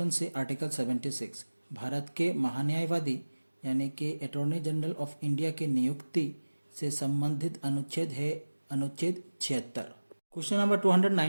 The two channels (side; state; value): both; inverted; correlation -1.00